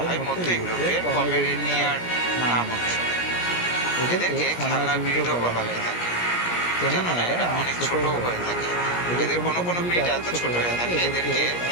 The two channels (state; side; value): late; right; 17 ms